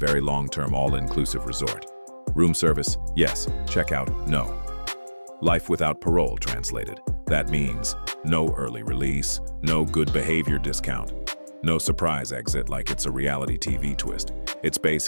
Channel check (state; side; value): inverted; both; correlation -1.00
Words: long-term all-inclusive resort. Room service, yes. Checkout, no. Life without parole translated. That means no early release, no good behavior discount, no surprise exit like it's a reality TV twist. It's